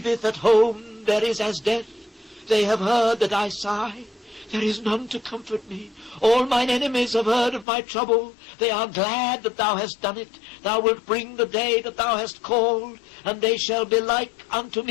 at home there is as death. They have heard that I sigh. There is none to comfort me. All mine enemies have heard of my trouble. They are glad that thou hast done it. Thou wilt bring the day that thou hast called, and they shall be like unto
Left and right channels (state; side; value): drops out; right; at 7.7 s